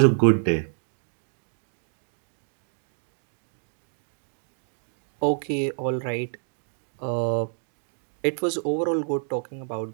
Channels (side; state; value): left; silent; 59 dB below the other